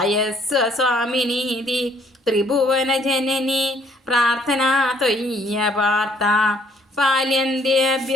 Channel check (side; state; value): both; normal; correlation 0.64